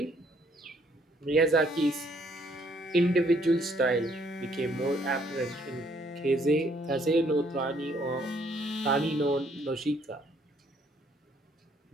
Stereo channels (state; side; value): normal; both; correlation 0.66